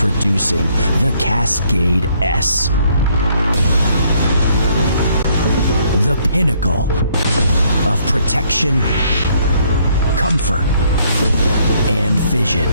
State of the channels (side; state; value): both; inverted; correlation -0.67